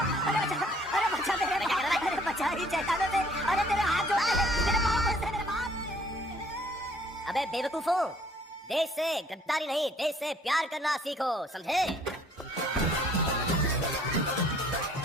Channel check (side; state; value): both; normal; correlation 0.59